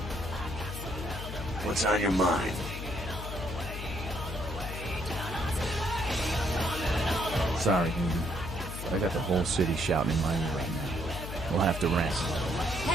What's on your mind? Sorry, Newton. I got the whole city shouting in my ear right now. We'll have to rest.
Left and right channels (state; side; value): noise; left; hum, 7 dB below the sound